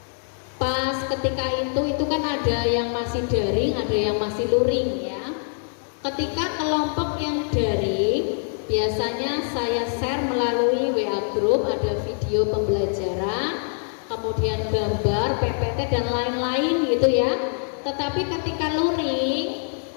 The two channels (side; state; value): right; silent; 63 dB below the other